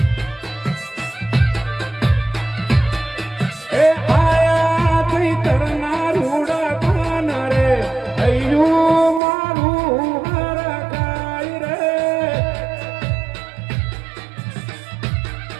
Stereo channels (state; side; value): drops out; left; at 9.2 s